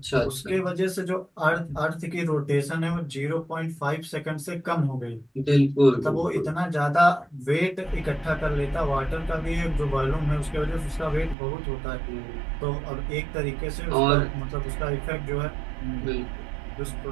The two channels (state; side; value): drops out; left; at 11.4 s